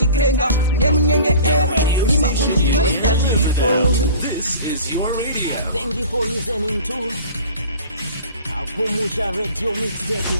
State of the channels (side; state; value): both; inverted; correlation -0.41